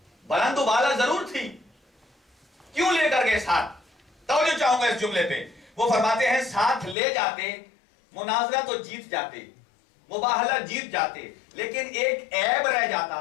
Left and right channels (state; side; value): drops out; right; at 7.0 s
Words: بلند و بالا ضرور تھی، کیوں لے کر گئے ساتھ؟ توجہ چاہوں گا اس جملے پہ۔ وہ فرماتے ہیں ساتھ لے جاتے، مناظرہ تو جیت جاتے، مباہلہ جیت جاتے، لیکن ایک عیب رہ